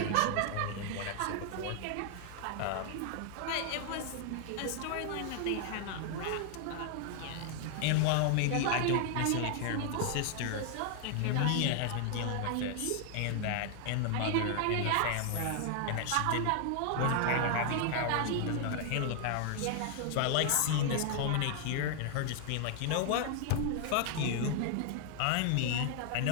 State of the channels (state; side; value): different; both; correlation 0.00